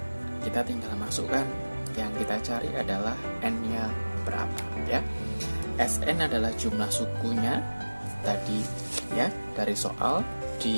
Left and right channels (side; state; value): both; inverted; correlation -1.00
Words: kita tinggal masukkan. Yang kita cari adalah N-nya berapa, ya. Sn adalah jumlah sukunya tadi, ya, dari soal